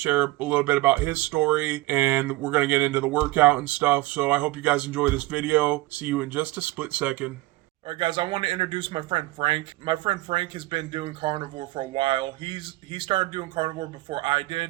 a little bit about his story, and we're going to get into the workout and stuff. So I hope you guys enjoy this video. See you in just a split second. Alright guys, I want to introduce my friend Frank. My friend Frank has been doing Carnivore for a while. He started doing Carnivore before I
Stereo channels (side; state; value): left; quieter; 19.3 dB